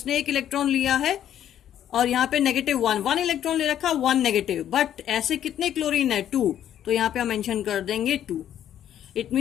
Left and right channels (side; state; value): right; quieter; 10.6 dB